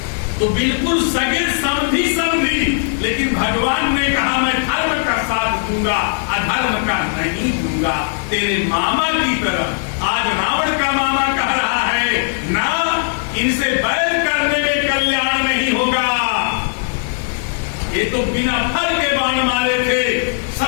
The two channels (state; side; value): silent; right; digital silence